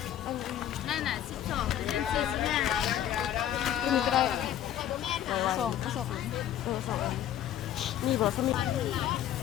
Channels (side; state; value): right; quieter; 11.3 dB